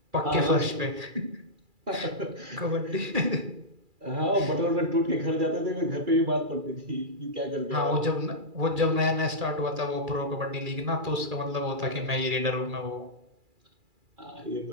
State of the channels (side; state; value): left; late; 2.3 ms